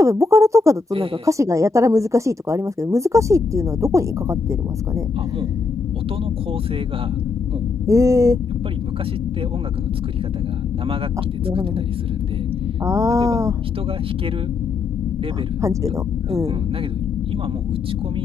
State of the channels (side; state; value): right; quieter; 4.3 dB